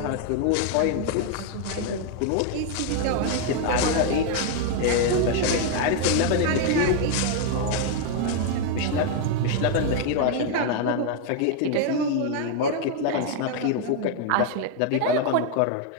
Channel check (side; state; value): both; different; correlation 0.00